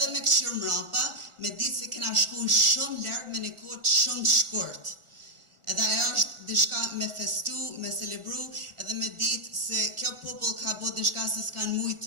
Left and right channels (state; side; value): late; left; 1.4 ms